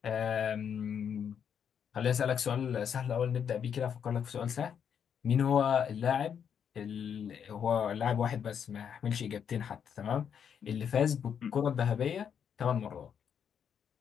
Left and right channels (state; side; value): quieter; right; 7.8 dB